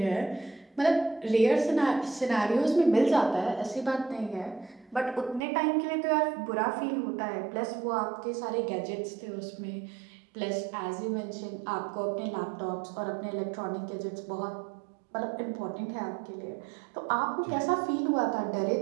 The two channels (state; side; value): drops out; left; at 5.4 s